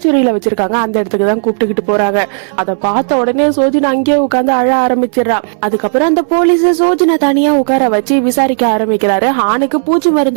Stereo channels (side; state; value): left; silent; digital silence